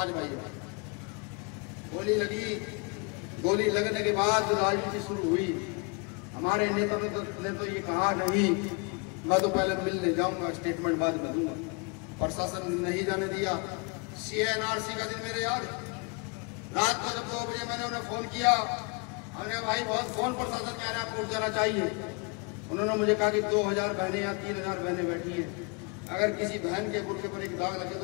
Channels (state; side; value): quieter; right; 32.2 dB